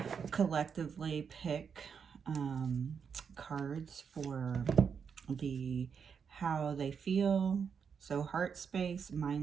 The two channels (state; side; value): quieter; left; 6.6 dB